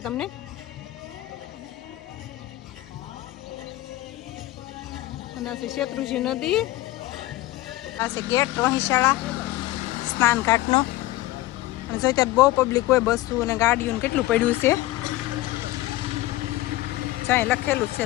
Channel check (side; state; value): right; quieter; 17.4 dB